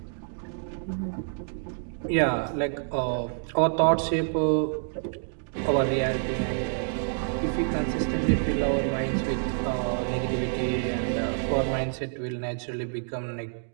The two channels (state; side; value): silent; left; digital silence